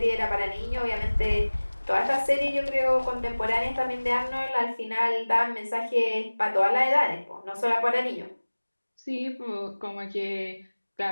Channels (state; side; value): inverted; both; correlation -1.00